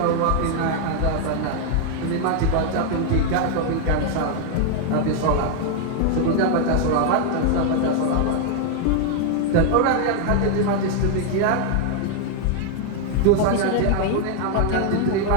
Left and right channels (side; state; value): both; different; correlation 0.00